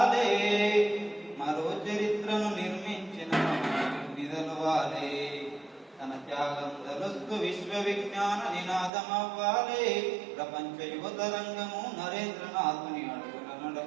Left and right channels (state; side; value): drops out; left; at 8.9 s